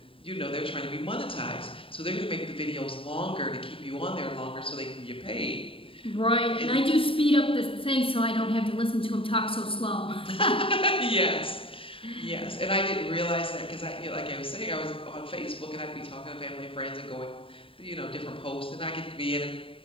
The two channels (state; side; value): late; right; 0.26 ms